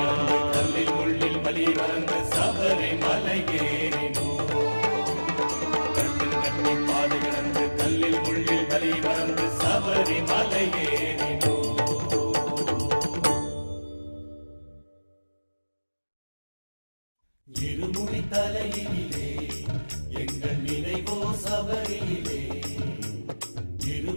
கல்லில் முள்ளில் வலி மறந்து சபரிமலை ஏறினோம் கட்டி பாதை கடந்து கல்லில் முள்ளில் வலி மறந்து சபரிமலை ஏறினோம் இருமுடி தலையிலே எங்கள் நினைவோ சபரியிலே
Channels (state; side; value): inverted; both; correlation -1.00